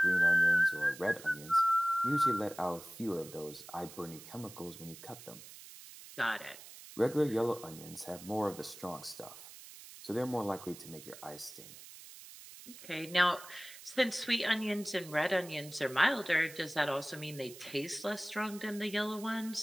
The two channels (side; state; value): right; noise; hiss, 16 dB below the sound